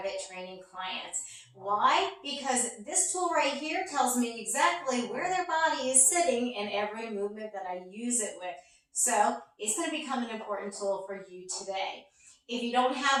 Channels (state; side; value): identical; both; correlation 1.00